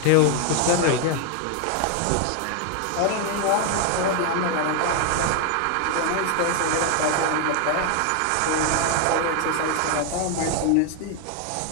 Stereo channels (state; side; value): different; both; correlation 0.01